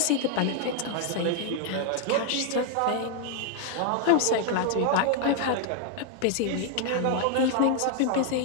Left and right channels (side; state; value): both; different; correlation 0.00